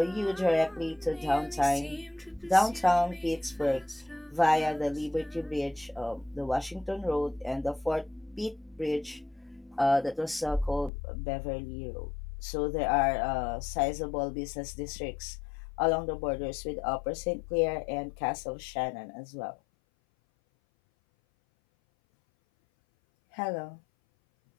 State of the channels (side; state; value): right; drops out; at 10.9 s